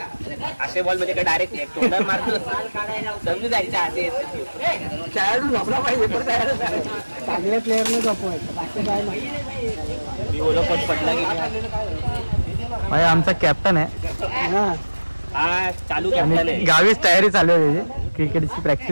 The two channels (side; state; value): both; inverted; correlation -1.00